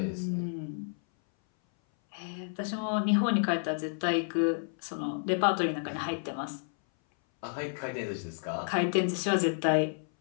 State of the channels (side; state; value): right; silent; 57 dB below the other